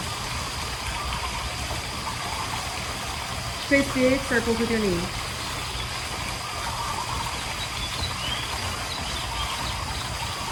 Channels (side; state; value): both; identical; correlation 1.00